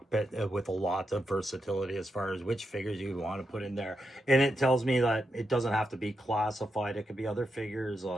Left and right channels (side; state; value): both; normal; correlation 0.85